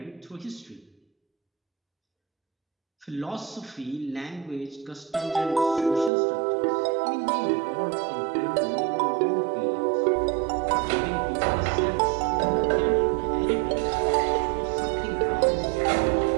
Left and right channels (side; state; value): left; drops out; at 6.1 s